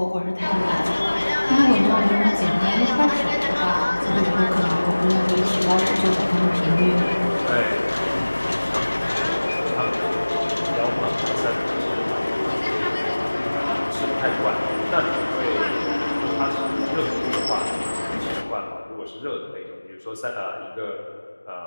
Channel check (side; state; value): both; inverted; correlation -1.00